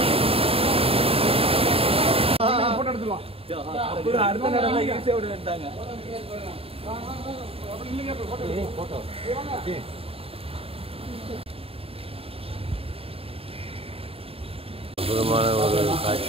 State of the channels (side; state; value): left; late; 0.28 ms